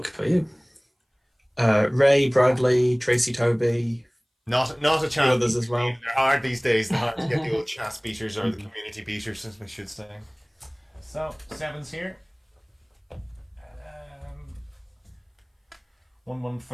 for you. Ray, Bradley, Tracy Toby, Not a chat. others as well. They're hard these days. They're hard to get the old chat speakers or the community beaters, as we should say. So 7's here.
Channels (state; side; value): identical; both; correlation 1.00